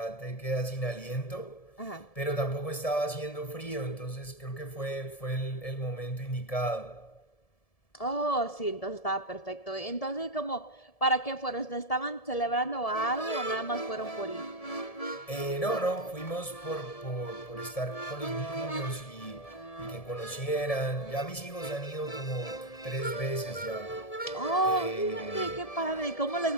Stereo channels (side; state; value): right; late; 1.7 ms